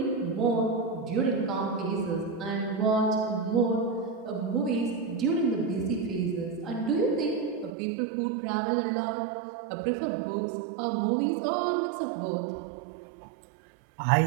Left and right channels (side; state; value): left; drops out; at 7.7 s